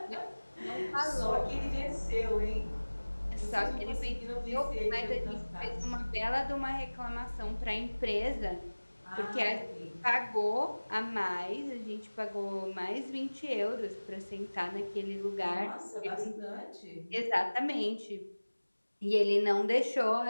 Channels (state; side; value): inverted; both; correlation -1.00